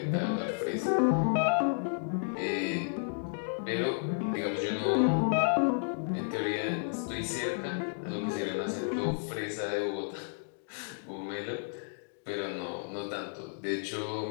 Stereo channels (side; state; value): right; silent; digital silence